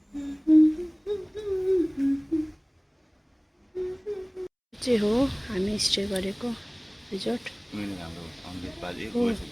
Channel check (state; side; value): identical; both; correlation 1.00